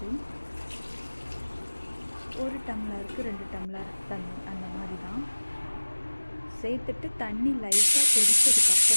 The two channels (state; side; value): inverted; both; correlation -1.00